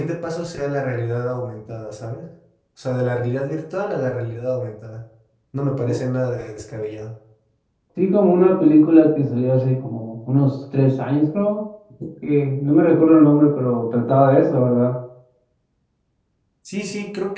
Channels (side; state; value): both; identical; correlation 1.00